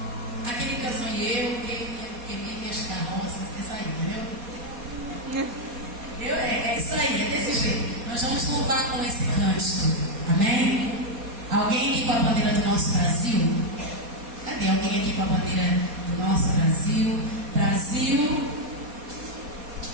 aquele canção que minhas carroças, isso aí, entendeu? É isso aí, é desse jeito. Nós vamos louvar com esse cântico. Amém? Alguém aqui com a bandeira do nosso Brasil? Cadê alguém aqui com a bandeira do nosso Brasil? Brasil.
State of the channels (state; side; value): late; left; 4.2 ms